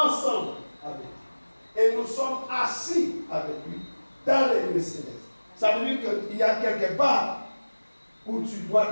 avec lui. Et nous sommes assis avec lui dans les lieux célestes. Ça veut dire qu'il y a quelque part où tu dois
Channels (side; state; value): both; inverted; correlation -1.00